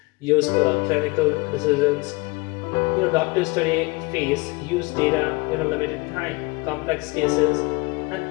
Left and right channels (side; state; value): right; quieter; 25.2 dB